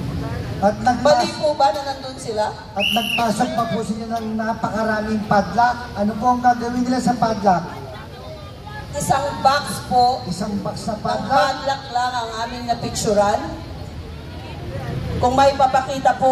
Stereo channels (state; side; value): identical; both; correlation 1.00